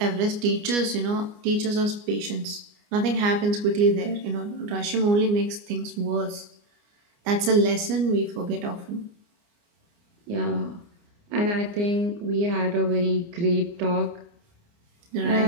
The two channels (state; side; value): late; left; 29 ms